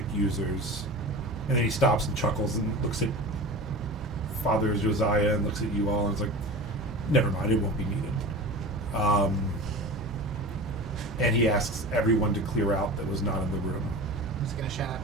users?" And then he stops and chuckles and looks at Father Josiah and looks at you all and is like, "Never mind, it won't be needed." And he asks everyone to clear out that was not in the room. I'm just gonna shout.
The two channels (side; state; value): both; normal; correlation 0.33